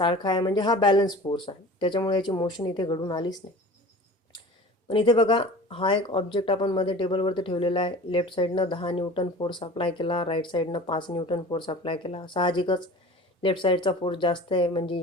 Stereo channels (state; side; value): normal; both; correlation 0.40